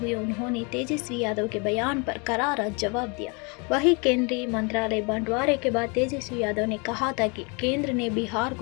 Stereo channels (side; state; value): right; quieter; 32.1 dB